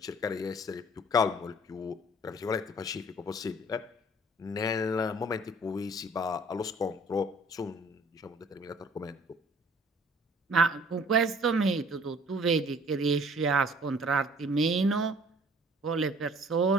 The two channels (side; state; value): both; normal; correlation 0.54